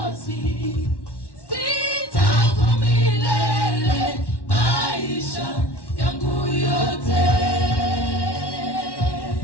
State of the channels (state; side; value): late; right; 1.1 ms